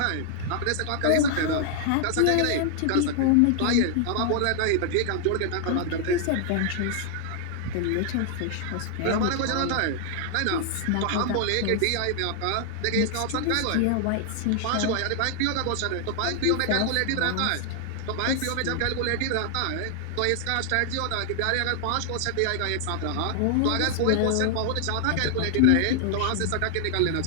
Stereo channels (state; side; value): different; both; correlation 0.00